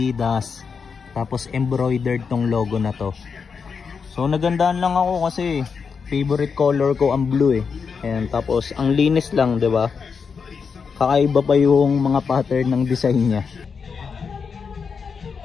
Tapos embroidered tong logo na to. So nagandaan lang ako kasi favorite color ko ang blue eh. Ayan. Tapos ang linis lang, 'di ba? Kakaiba pa yung mga pattern ng design niya.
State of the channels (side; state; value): right; quieter; 5.8 dB